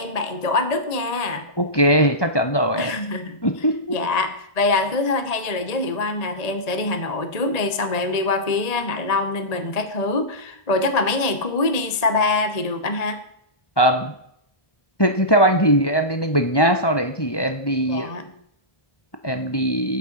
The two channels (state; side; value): late; right; 1.8 ms